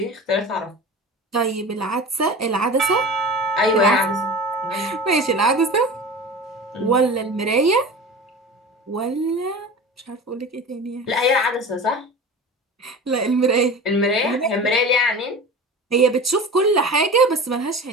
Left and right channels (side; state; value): both; normal; correlation 0.34